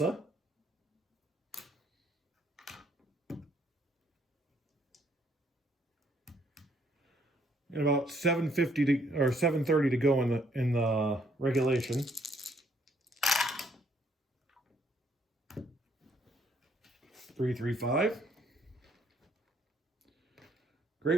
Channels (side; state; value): both; normal; correlation 0.67